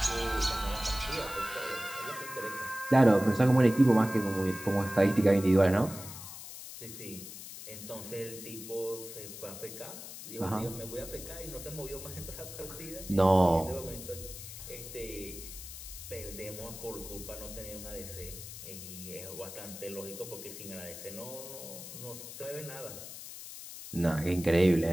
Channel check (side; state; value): left; noise; hiss, 12 dB below the sound